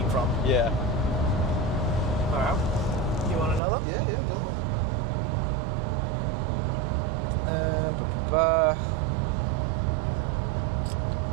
from. Yeah. Alright. You want another? Yeah, go on.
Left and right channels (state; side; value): drops out; left; at 3.6 s